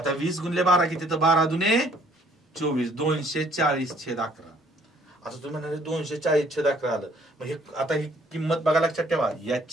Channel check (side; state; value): both; normal; correlation 0.62